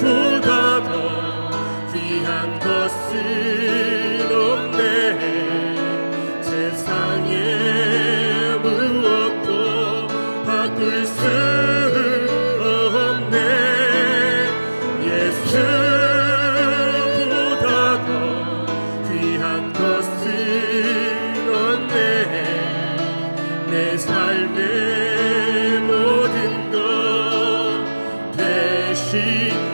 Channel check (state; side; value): inverted; both; correlation -1.00